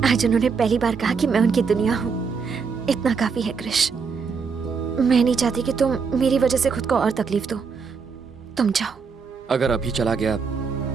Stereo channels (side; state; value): left; quieter; 5.5 dB